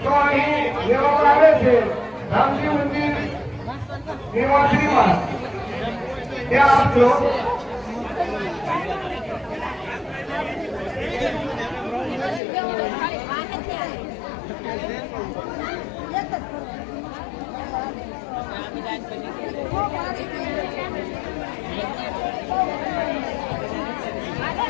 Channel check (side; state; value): right; drops out; at 12.4 s